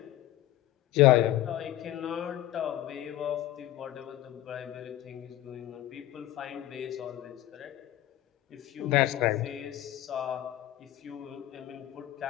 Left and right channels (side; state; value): right; quieter; 14.1 dB